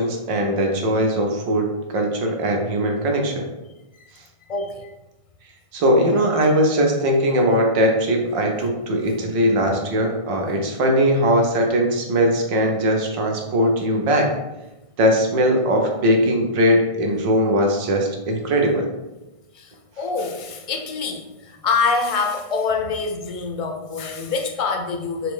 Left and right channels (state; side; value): late; left; 1.6 ms